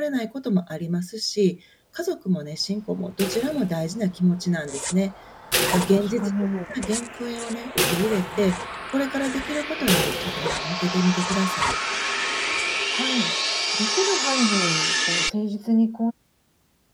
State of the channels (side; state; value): both; identical; correlation 1.00